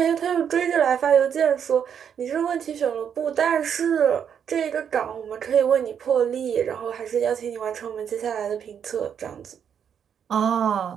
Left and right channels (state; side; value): quieter; left; 8.1 dB